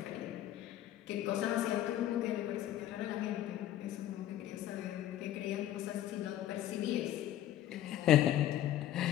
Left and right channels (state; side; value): quieter; right; 12.7 dB